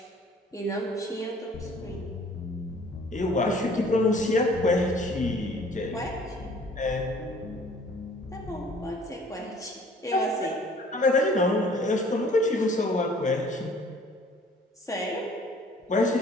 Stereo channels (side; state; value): both; normal; correlation 0.54